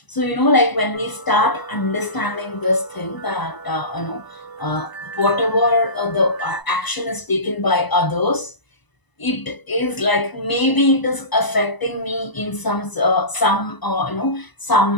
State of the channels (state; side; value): late; right; 1.0 ms